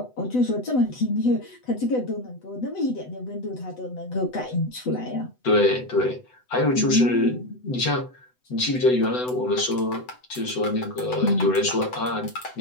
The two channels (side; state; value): right; late; 8.0 ms